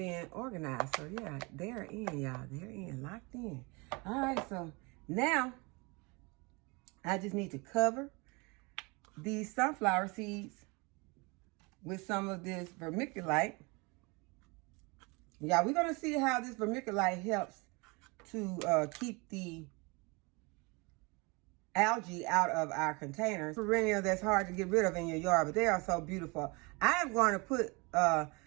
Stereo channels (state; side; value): quieter; left; 28.0 dB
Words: organized. So yeah, they're in, y'all. They're in, locked in. All right, so now I just need to cover these sunflower seeds with some of this vermiculite. Yeah, we're gonna see how this vermiculite helps to keep the algae out of our containers. Perennial that's hard to get rid of in your yard, but they are so beautiful. I am going to put